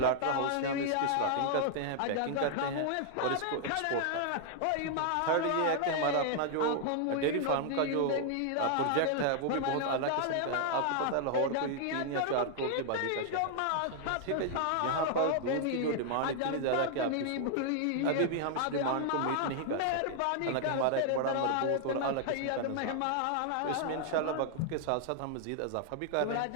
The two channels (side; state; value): both; different; correlation 0.00